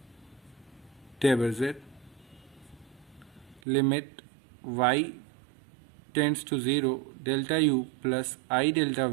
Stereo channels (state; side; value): drops out; left; at 3.6 s